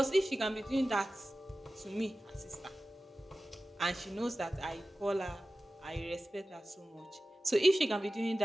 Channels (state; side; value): normal; both; correlation 0.95